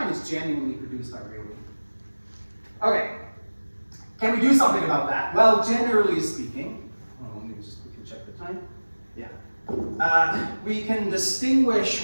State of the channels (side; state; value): both; inverted; correlation -1.00